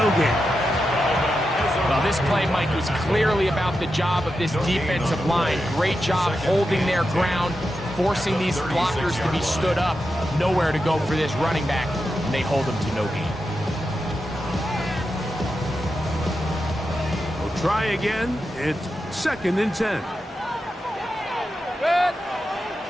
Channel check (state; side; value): normal; both; correlation 0.89